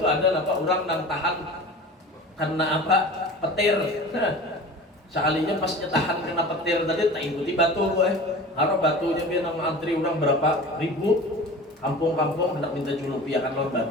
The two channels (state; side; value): normal; both; correlation 0.37